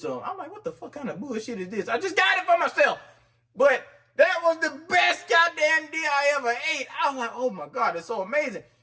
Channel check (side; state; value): both; identical; correlation 1.00